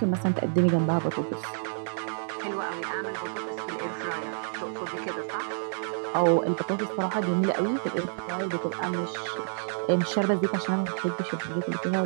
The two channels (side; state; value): left; silent; digital silence